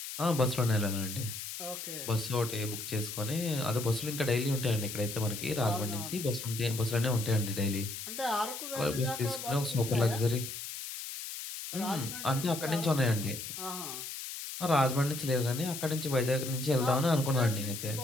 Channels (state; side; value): noise; left; hiss, 8 dB below the sound